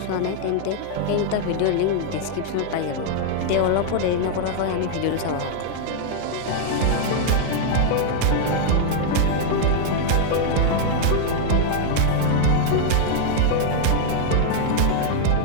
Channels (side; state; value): both; different; correlation -0.01